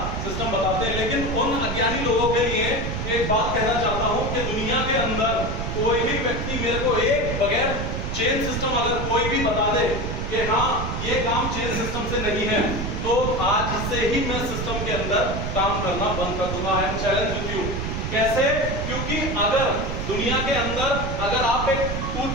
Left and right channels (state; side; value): noise; right; rumble, 3 dB below the sound